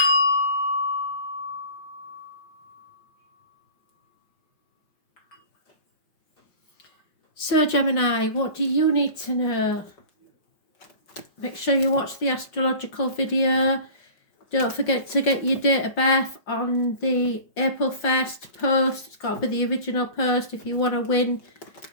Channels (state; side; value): late; right; 5.6 ms